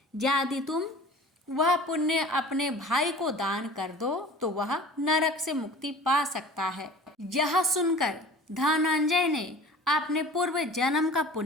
यदि तुम वह पुण्य अपने भाई को दान कर दो तो वह नरक से मुक्ति पा सकता है। यह सुनकर धनंजय ने अपने पूर्व जन्म का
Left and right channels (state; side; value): normal; both; correlation 0.42